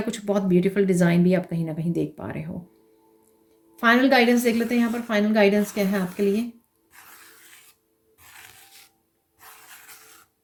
कुछ बहुत ब्यूटीफुल डिज़ाइन भी आप कहीं ना कहीं देख पा रहे हो। फाइनल गाइडेंस देख लेते हैं यहाँ पर, फाइनल गाइडेंस क्या है आपके लिए।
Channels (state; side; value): identical; both; correlation 1.00